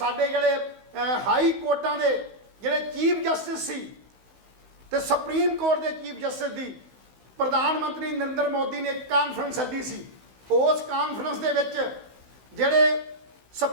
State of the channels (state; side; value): late; left; 16 ms